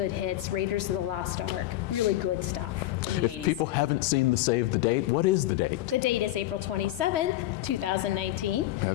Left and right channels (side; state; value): right; quieter; 15.2 dB